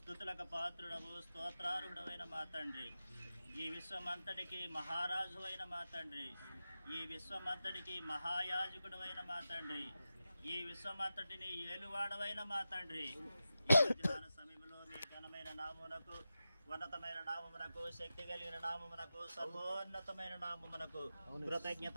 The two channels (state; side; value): inverted; both; correlation -0.92